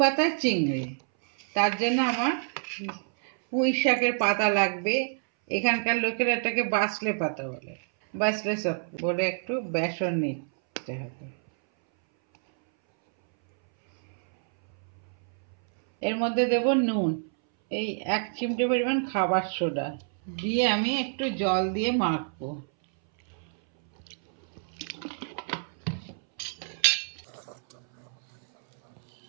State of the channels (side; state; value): left; silent; 59 dB below the other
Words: পাতার চিংড়ি। তার জন্য আমার পুঁই শাকের পাতা লাগবে। এখানকার লোকেরা এটাকে বাসলে পাতা বলে, বাসলে শাক বলে। একটু বেসন নিতে হবে। এর মধ্যে দেব নুন, এই 1 চিমটে পরিমাণ খাবার সোডা দিয়ে আমি একটু জল দিয়ে মাখবো।